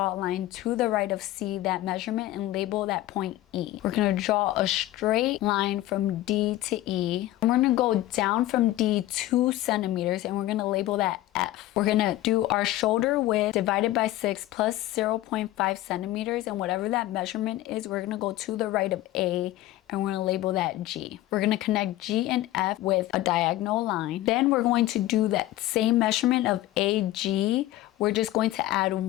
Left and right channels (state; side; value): quieter; right; 15.6 dB